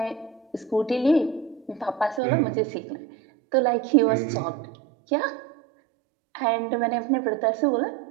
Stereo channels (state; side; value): drops out; left; at 2.2 s